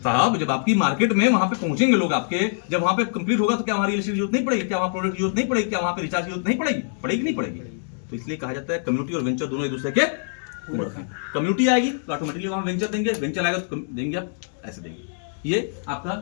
साहब? जब आपकी मार्केट में वहाँ पे पहुंचेंगे लोग आपके, जब वहाँ पे कंप्लीट होगा तो क्या वहाँ रियल एस्टेट की जरूरत नहीं पड़ेगी? क्या वहाँ प्रोडक्ट की जरूरत नहीं पड़ेगी? क्या वहाँ पे रिचार्ज की जरूरत नहीं पड़ेगी? पड़ेगी नहीं पड़ेगी? तो इसलिए कहा जाता है कम्युनिटी और वेंचर दोनों एक दूसरे के पूरक हैं। कम्युनिटी आएगी तो ऑटोमेटिकली वहाँ वेंचर देंगे, वेंचर आएगा तो देंगे आप, ऐसे देंगे। ये आपका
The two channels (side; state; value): right; silent; digital silence